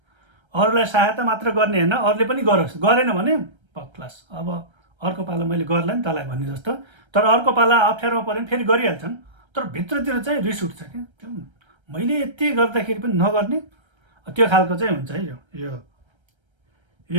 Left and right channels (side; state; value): left; late; 1.3 ms